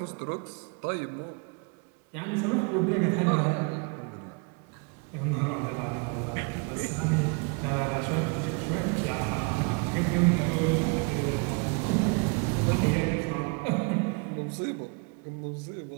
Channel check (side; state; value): left; quieter; 32.8 dB